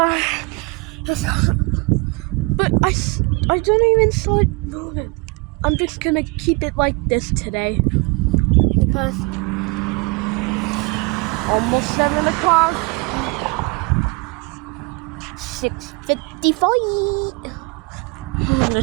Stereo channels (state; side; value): quieter; left; 27.8 dB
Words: I don't even saw it moving. I'm just gonna keep it like this today because almost 7 o'clock. 6:55.